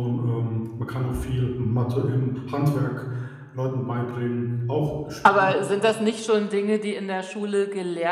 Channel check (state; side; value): identical; both; correlation 1.00